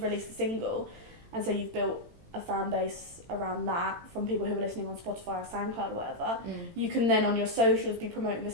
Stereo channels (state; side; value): late; left; 18 ms